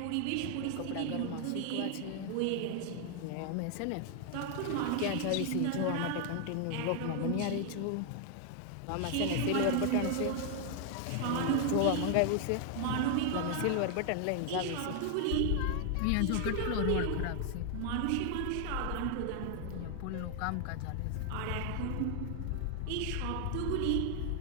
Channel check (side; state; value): both; different; correlation 0.00